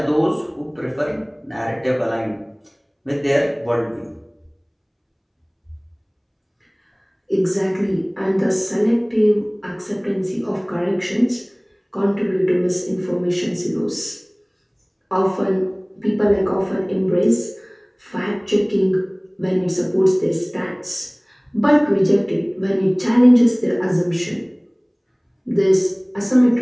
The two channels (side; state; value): both; identical; correlation 1.00